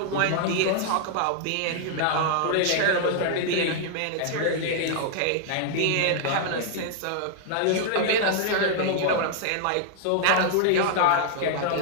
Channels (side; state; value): both; different; correlation -0.01